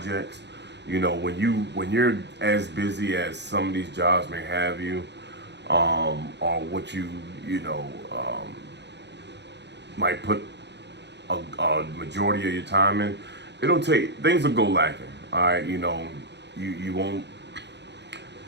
When you're as busy as some of these jobs may have you, or what might put a majority of your time in, things will go lacking. All right, you won't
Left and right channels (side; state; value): left; late; 0.50 ms